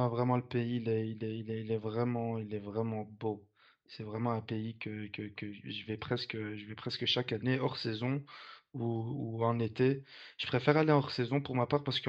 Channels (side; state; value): both; identical; correlation 1.00